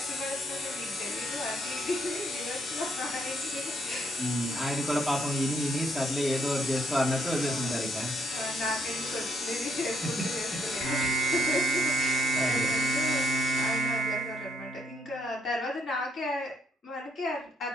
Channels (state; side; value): normal; both; correlation 0.72